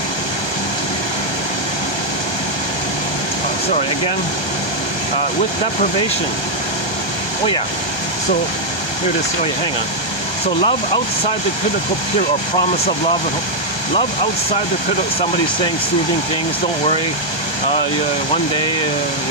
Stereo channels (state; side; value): late; right; 1.3 ms